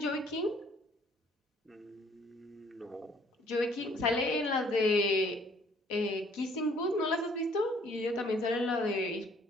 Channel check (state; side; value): normal; both; correlation 0.61